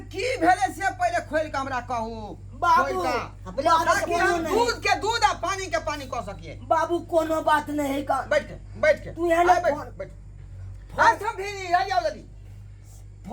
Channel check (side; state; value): both; identical; correlation 1.00